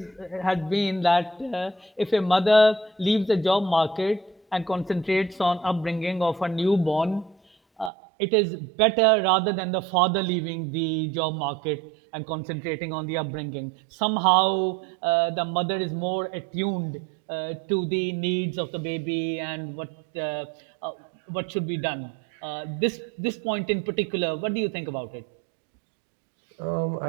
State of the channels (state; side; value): drops out; left; at 7.9 s